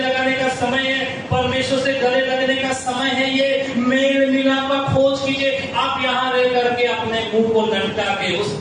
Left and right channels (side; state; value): both; identical; correlation 1.00